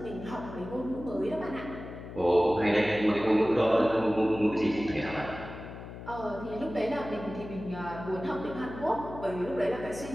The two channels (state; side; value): noise; left; hum, 11 dB below the sound